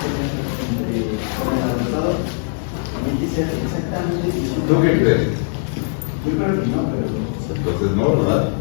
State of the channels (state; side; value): silent; right; 65 dB below the other